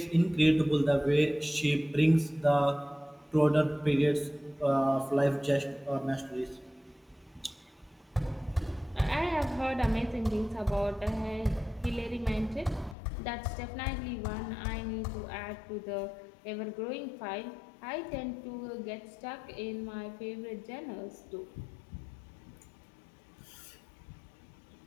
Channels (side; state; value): right; drops out; at 13.0 s